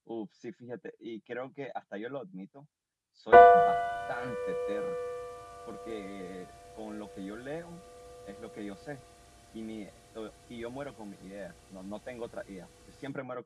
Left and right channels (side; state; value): both; identical; correlation 1.00